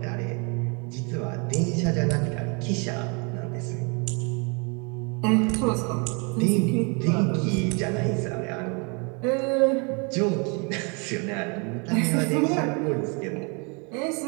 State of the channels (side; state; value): left; quieter; 33.2 dB